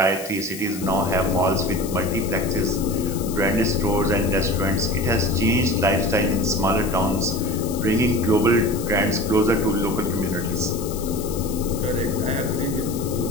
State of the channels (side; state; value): left; noise; hiss, 13 dB below the sound